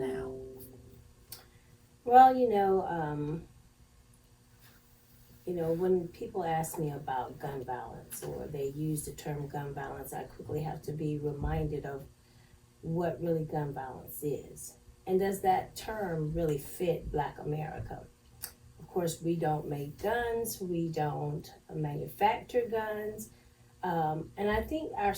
Well, when people ask me about gun violence or they use the term gun violence, I quickly have to be reminded of what really gun violence is. And does that term really fit Black America? Of course, we don't make guns, we don't manufacture guns. And I think our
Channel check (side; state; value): both; identical; correlation 1.00